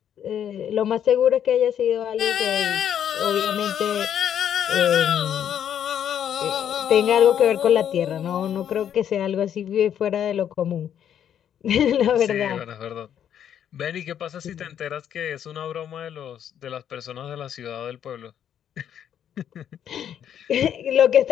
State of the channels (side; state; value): right; quieter; 9.5 dB